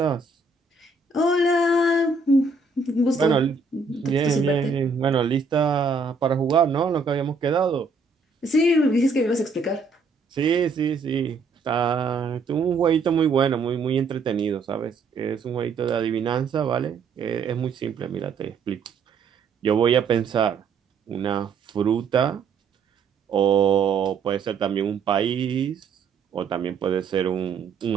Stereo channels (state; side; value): quieter; left; 4.4 dB